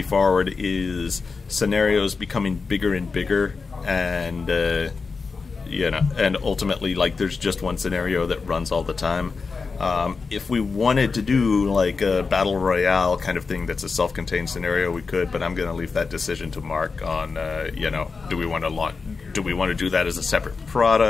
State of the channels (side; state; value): right; quieter; 4.6 dB